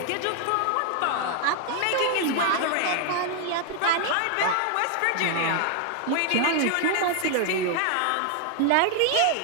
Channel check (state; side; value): different; both; correlation 0.00